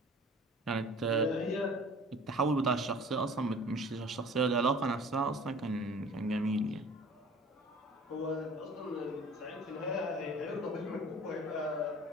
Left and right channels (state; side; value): normal; both; correlation 0.46